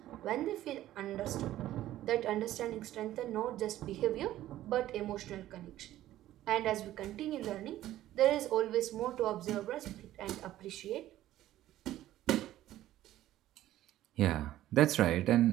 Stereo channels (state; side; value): quieter; left; 13.9 dB